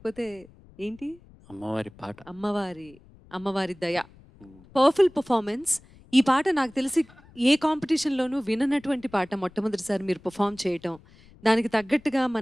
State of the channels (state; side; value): noise; left; rumble, 25 dB below the sound